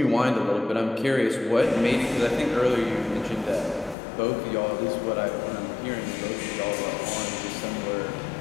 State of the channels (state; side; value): drops out; right; at 4.0 s